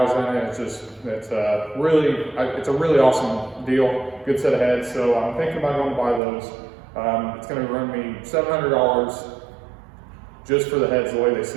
in it. It's a really awesome deal. Good set of heads. So I'm thinking about going to buy those. It's going to run me $700 just for the heads the way they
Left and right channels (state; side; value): drops out; left; at 6.2 s